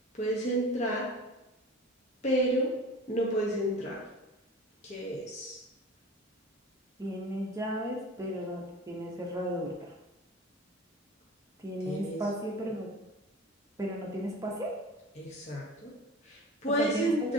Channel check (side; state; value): both; normal; correlation 0.38